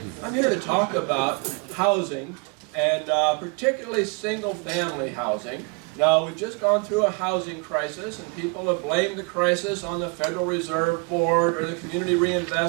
I'm here to talk about housing, and particularly single-family housing. Now, we've just gone through a housing crisis, and people have blamed the crisis on the Federal Reserve Board, or the Community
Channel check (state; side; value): quieter; left; 31.9 dB